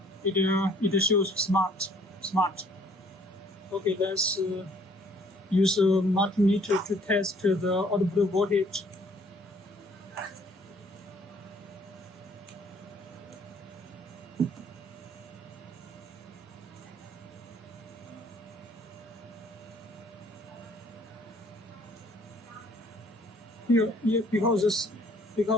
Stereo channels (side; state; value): both; normal; correlation 0.60